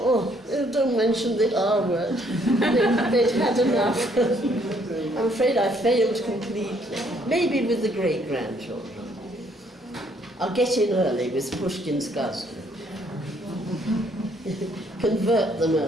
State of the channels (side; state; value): both; normal; correlation 0.66